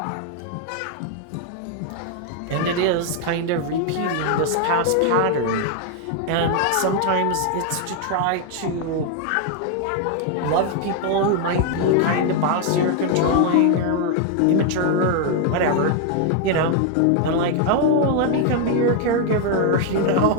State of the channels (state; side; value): different; both; correlation 0.00